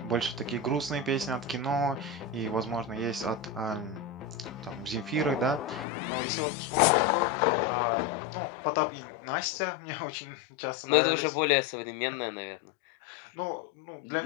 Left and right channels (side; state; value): right; drops out; at 5.9 s